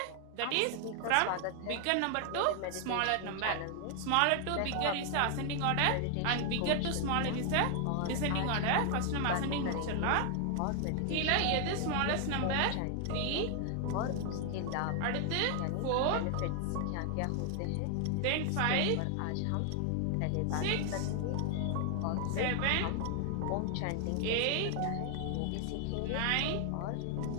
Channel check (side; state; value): both; different; correlation 0.00